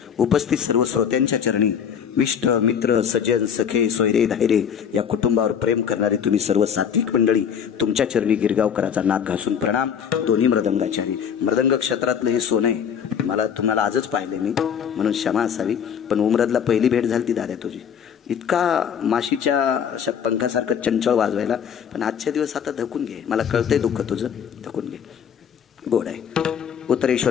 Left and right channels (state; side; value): quieter; right; 7.9 dB